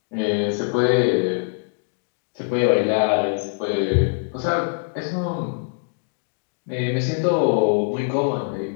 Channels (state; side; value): silent; right; digital silence